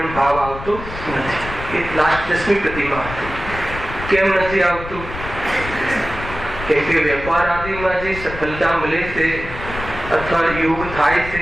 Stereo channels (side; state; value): left; noise; rumble, 10 dB below the sound